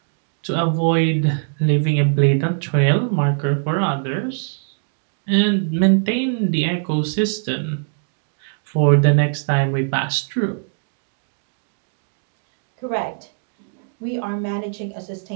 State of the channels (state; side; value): silent; left; digital silence